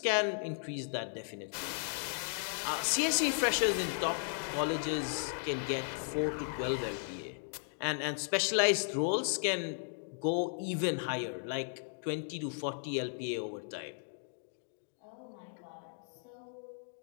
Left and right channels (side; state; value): right; silent; digital silence